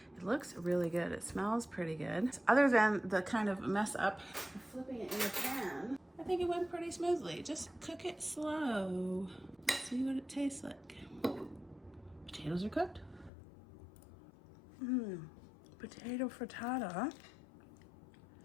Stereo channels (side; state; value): right; drops out; at 13.3 s